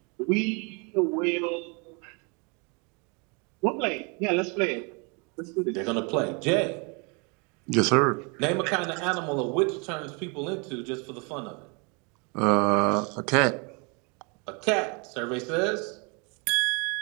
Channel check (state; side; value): quieter; left; 32.6 dB